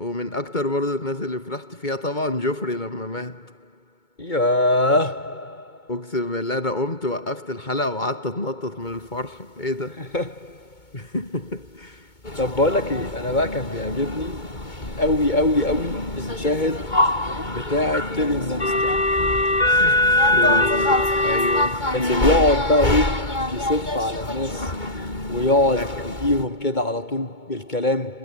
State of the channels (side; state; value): right; late; 2.2 ms